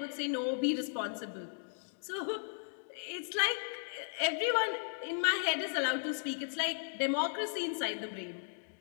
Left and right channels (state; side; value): silent; right; digital silence